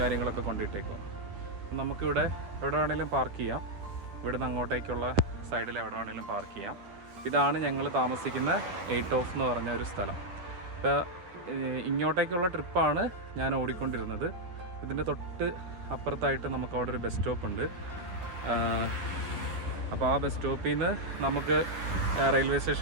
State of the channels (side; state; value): left; late; 10 ms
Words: കൊണ്ടിട്ടേക്കും. നമുക്കിവിടെ എവിടെ വേണമെങ്കിലും പാർക്ക് ചെയ്യാം. ഇവിടുന്ന് അങ്ങോട്ടേക്കുള്ള സൈഡിൽ എവിടെ വേണമെങ്കിലും പാർക്ക് ചെയ്യാം. ഇതാണ് ഞങ്ങൾ താമസിക്കുന്ന 8 ഓഫ് എന്ന് പറഞ്ഞ ഒരു സ്ഥലം. ഇപ്പോൾ ഇങ്ങോട്ടേക്കുള്ള ട്രിപ്പാണ് ഞാൻ ഓടിക്കൊണ്ടിരുന്നത്. ഇതിൻ്റെ തൊട്ട് അപ്പുറത്തായിട്ട് നമുക്ക് അവിടെ ഒരു ബസ് സ്റ്റോപ്പ് ഉണ്ട്. അപ്പോൾ ആ ബസ് സ്റ്റോപ്പിൽ നിന്ന് നമുക്ക് റെയിൽവേ